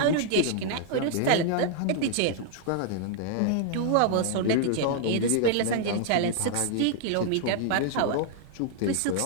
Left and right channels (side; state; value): both; different; correlation 0.00